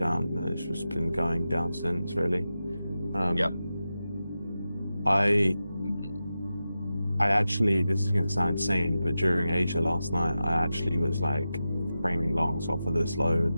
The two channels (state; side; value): inverted; both; correlation -0.92